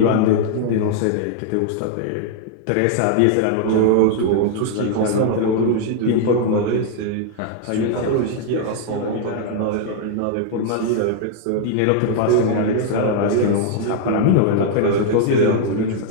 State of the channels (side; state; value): both; different; correlation -0.01